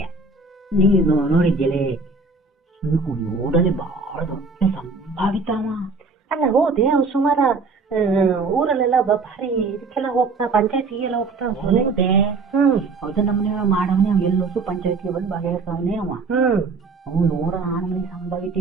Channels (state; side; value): quieter; left; 4.0 dB